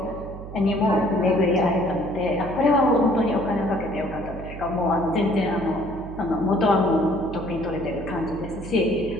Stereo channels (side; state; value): right; noise; hum, 12 dB below the sound